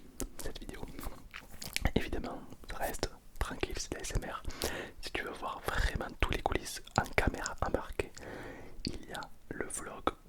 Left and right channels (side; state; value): both; identical; correlation 1.00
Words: cette vidéo. Évidemment, ça reste tranquille, c'est de la ASMR. Si tu veux voir vraiment tous les coulisses en caméra embarquée, il y a le vlog